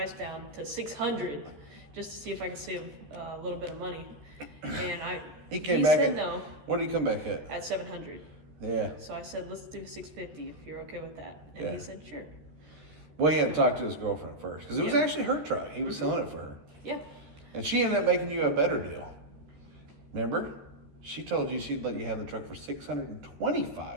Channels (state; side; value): late; left; 13 ms